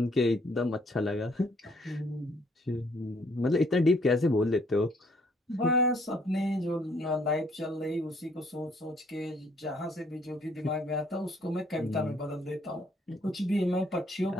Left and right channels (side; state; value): both; normal; correlation 0.64